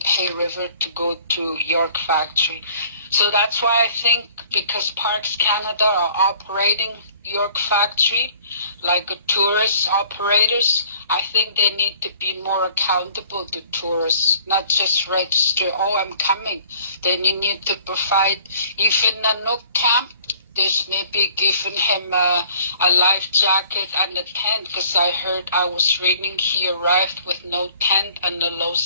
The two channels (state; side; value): inverted; both; correlation -0.54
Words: Hay River to go to York Factory. So that's why I think, because Parks Canada are operating York Factory like a tourist operators, I think they need to be more accountable to tourists, not just register, I'm coming. Then you need to provide, even a no camp, there's maybe giving him a life jacket and a tent, because I was reading he arrived with no tent and a low